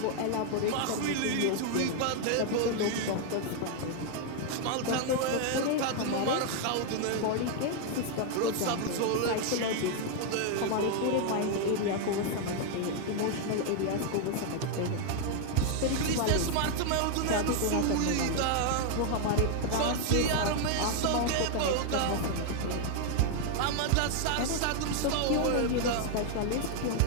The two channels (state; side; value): different; both; correlation 0.00